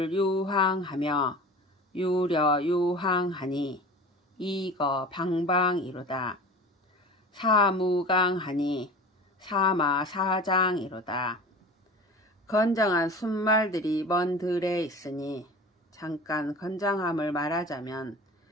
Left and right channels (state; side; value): normal; both; correlation 0.37